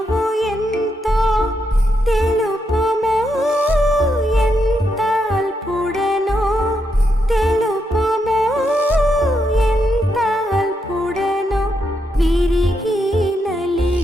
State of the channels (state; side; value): normal; both; correlation 0.81